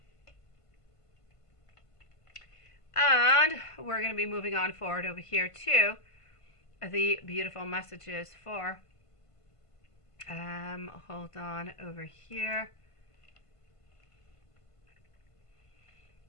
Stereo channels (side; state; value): right; late; 1.5 ms